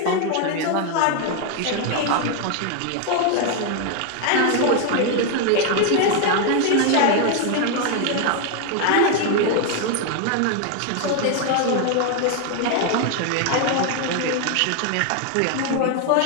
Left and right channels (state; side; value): different; both; correlation 0.01